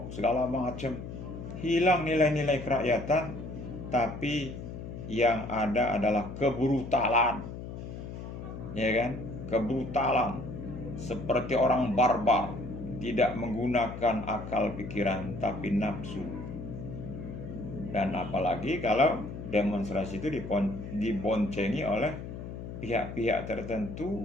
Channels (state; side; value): noise; left; hum, 9 dB below the sound